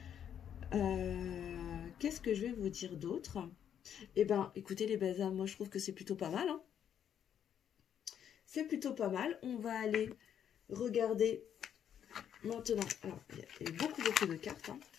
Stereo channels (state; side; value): quieter; right; 9.1 dB